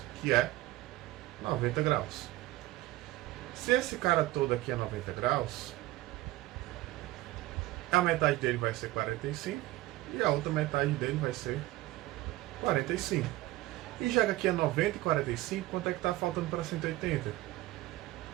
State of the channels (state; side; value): quieter; left; 17.5 dB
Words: que é 90 graus. Se esse cara todo aqui é 90 graus, a metade dele vai ser 45 e a outra metade dele vai ser 45. E já que aqui é 90 e 45, quanto é que está faltando para 180?